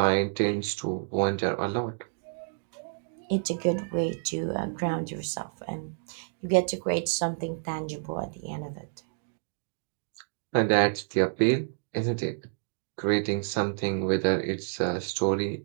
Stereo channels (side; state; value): left; silent; digital silence